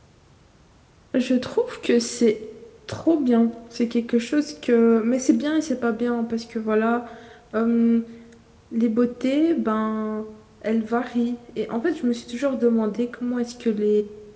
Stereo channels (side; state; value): both; identical; correlation 1.00